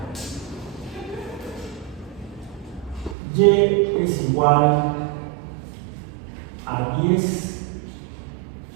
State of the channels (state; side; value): drops out; left; at 3.2 s